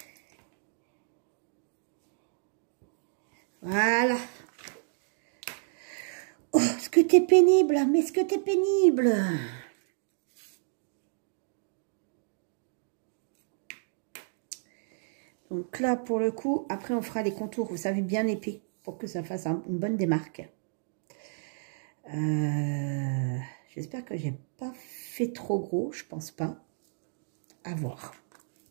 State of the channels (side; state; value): left; silent; digital silence